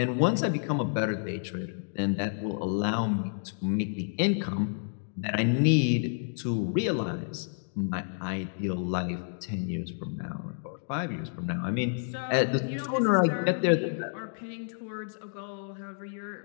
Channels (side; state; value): right; silent; digital silence